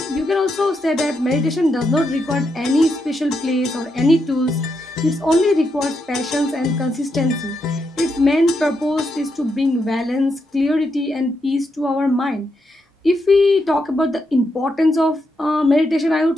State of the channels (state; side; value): normal; both; correlation 0.82